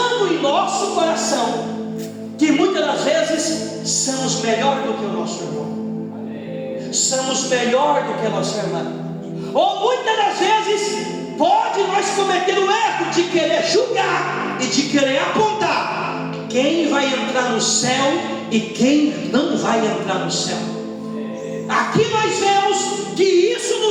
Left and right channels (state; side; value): identical; both; correlation 1.00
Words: em nosso coração que muitas das vezes somos melhor do que o nosso irmão, somos melhor do que a nossa irmã, ou muitas das vezes pode nós cometer o erro de querer julgar e de querer apontar quem vai entrar no céu e quem não vai entrar no céu. Aqui nós vemos que isso